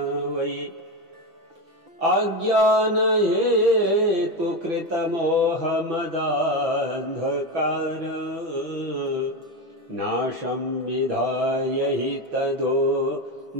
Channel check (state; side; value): late; left; 6.1 ms